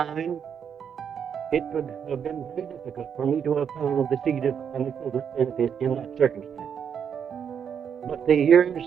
it would have been very difficult for me to have found the seed of an equivalent benefit in that circumstance. But the years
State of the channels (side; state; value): left; quieter; 7.7 dB